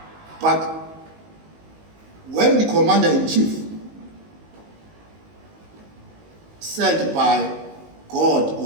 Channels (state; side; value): late; left; 19 ms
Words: But when the commander-in-chief sent by God